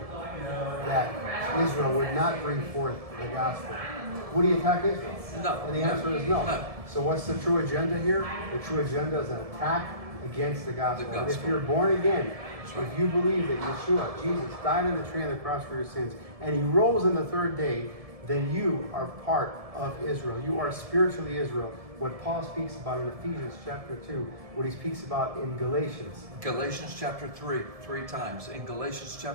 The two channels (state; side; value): late; left; 1.7 ms